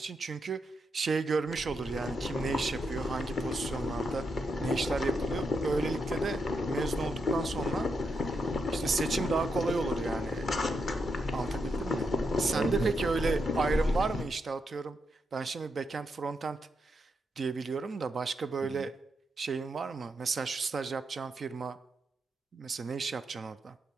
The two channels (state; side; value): normal; both; correlation 0.83